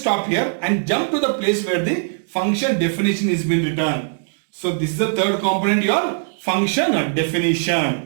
here and jump to the place where the function definition is been written. So this is the third component, your function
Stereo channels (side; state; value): left; silent; digital silence